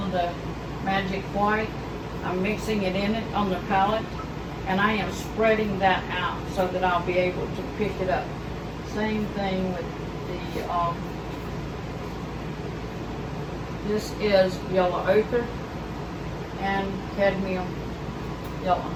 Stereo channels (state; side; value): identical; both; correlation 1.00